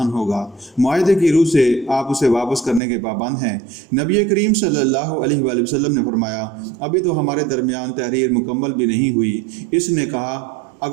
ہوگا۔ معاہدے کی روح سے آپ اسے واپس کرنے کے پابند ہیں۔ نبی کریم صلی اللہ علیہ وآلہ وسلم نے فرمایا، ابھی تو ہمارے درمیان تحریر مکمل بھی نہیں ہوئی۔ اس نے کہا،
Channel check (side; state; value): left; drops out; at 2.8 s